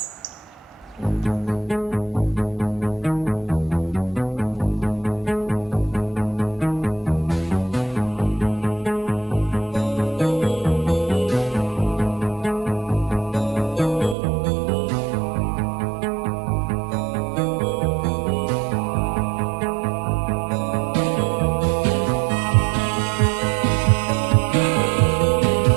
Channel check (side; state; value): left; drops out; at 14.2 s